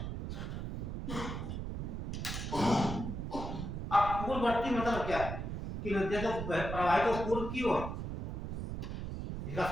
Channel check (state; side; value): noise; right; rumble, 5 dB below the sound